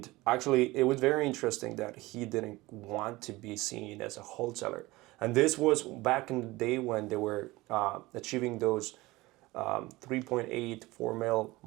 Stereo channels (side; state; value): left; quieter; 20.3 dB